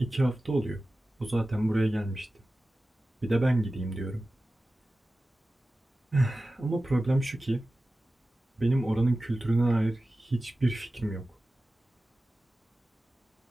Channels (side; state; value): both; normal; correlation 0.95